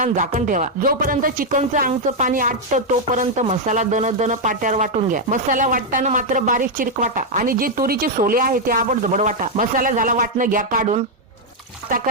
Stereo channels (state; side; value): normal; both; correlation 0.00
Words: झाकण ठेवा. जोपर्यंत चिकनचं अंगचं पाणी आटतं तोपर्यंत मसाला दन पाट्यावर वाटून घ्या. मसाला वाटताना मात्र बारीक चिरीक वाटा आणि जे तुरीचे सोले आहे ते आबड जबड वाटा. मसाला झाला वाटणं घ्या काढून. आता